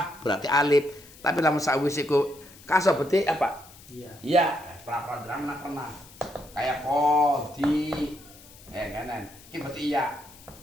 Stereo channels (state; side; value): noise; left; hiss, 22 dB below the sound